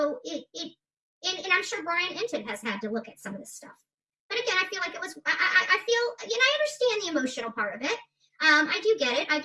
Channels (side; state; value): both; identical; correlation 1.00